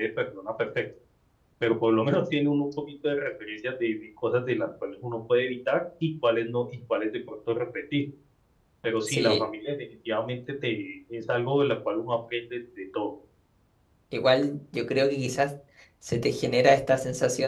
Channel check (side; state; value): both; identical; correlation 1.00